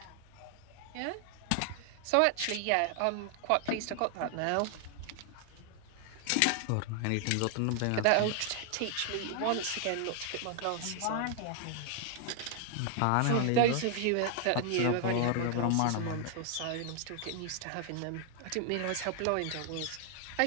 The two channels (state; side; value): different; both; correlation 0.00